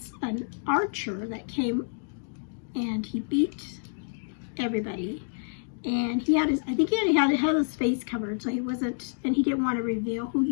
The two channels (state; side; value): silent; right; digital silence